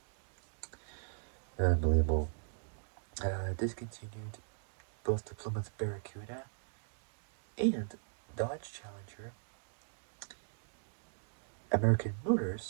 unbelievable, discontinued both the Plymouth Barracuda and Dodge Challenger. American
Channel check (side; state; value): left; silent; digital silence